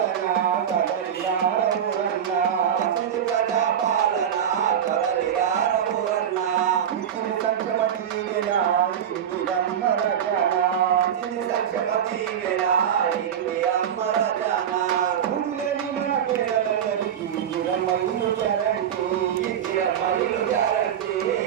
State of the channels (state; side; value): quieter; left; 9.1 dB